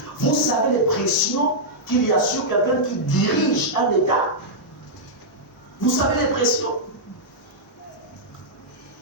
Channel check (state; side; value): normal; both; correlation -0.08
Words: Vous savez les pressions qu'il y a sur quelqu'un qui dirige un État. Vous savez les pressions.